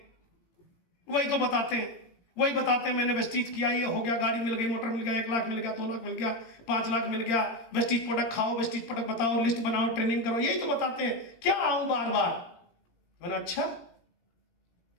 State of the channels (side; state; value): right; late; 18 ms